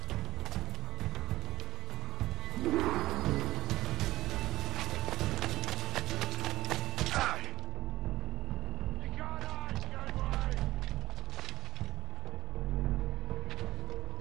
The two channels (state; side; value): quieter; left; 16.7 dB